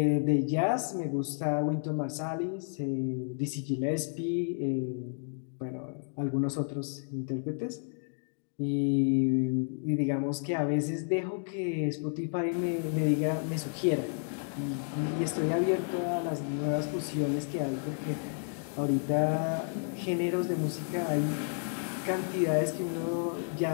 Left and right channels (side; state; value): right; silent; 57 dB below the other